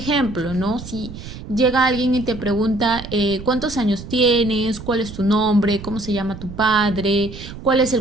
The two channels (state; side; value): noise; right; rumble, 12 dB below the sound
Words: ¿no? Si llega alguien y te pregunta cuántos años tienes, cuál es tu nombre, cómo se llama tu padre, cuál es